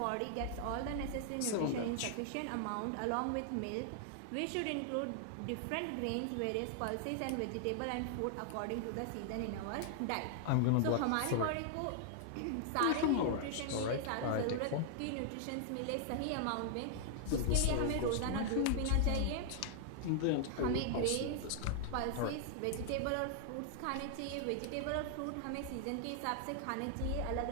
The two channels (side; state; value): both; different; correlation -0.01